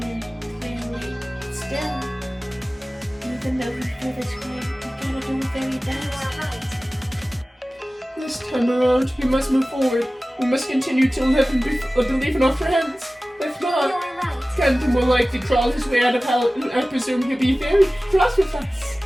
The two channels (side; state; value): both; normal; correlation 0.97